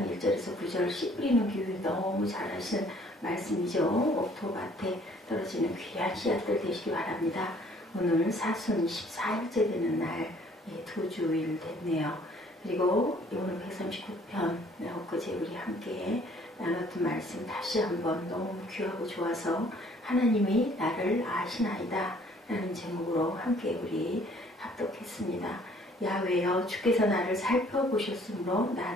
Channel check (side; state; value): both; normal; correlation 0.59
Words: 1절에서 9절 씨 뿌리는 교육 너무 잘하시는 말씀이죠. 옥토밭에 떨어지는 귀한 씨앗들 되시기 바랍니다. 오늘 사순 14일째 되는 날, 두 주일 됐네요. 그리고 오늘 139편 엊그제 우리 함께 나눴던 말씀 다시 한번 너무 귀하고 좋아서 하나님이 나를 아시나이다 라는 제목으로 함께 우리 합독했습니다. 야훼여 주께서 나를 살펴보셨으므로